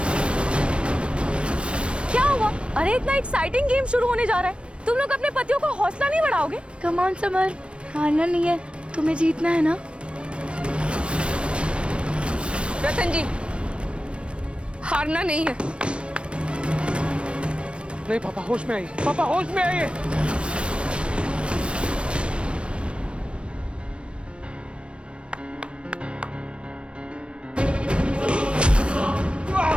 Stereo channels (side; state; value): left; late; 0.059 ms